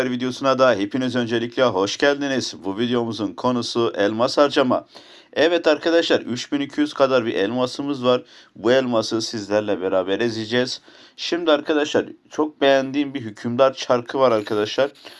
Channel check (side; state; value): both; identical; correlation 1.00